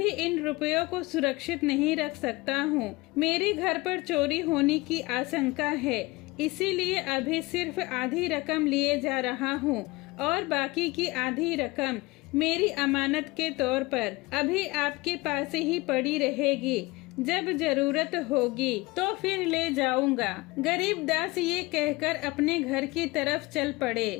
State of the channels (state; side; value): quieter; right; 22.5 dB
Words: इन रुपयों को सुरक्षित नहीं रख सकता हूँ। मेरे घर पर चोरी होने की आशंका है, इसीलिए अभी सिर्फ आधी रकम लिए जा रहा हूँ और बाकी की आधी रकम मेरी अमानत के तौर पर अभी आपके पास ही पड़ी रहेगी। जब जरूरत होगी तो फिर ले जाऊंगा। गरीब दास ये कहकर अपने घर की तरफ चल पड़े।